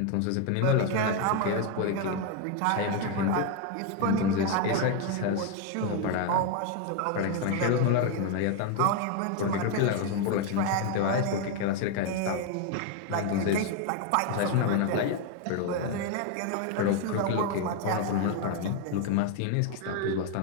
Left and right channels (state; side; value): different; both; correlation 0.01